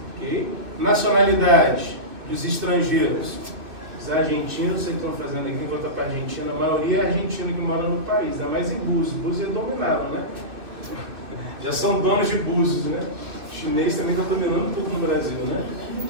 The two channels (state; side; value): late; left; 2.6 ms